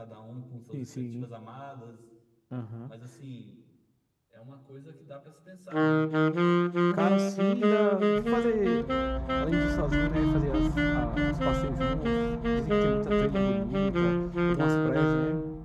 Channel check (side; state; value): both; identical; correlation 1.00